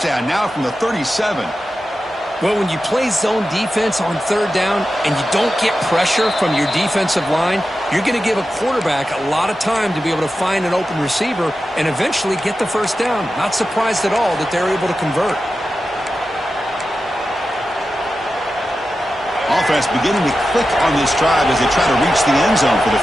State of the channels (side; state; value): both; normal; correlation 0.92